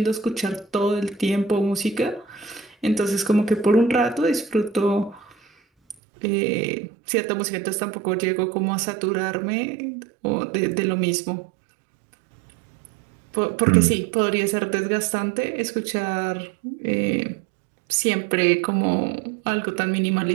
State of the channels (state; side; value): drops out; left; at 6.0 s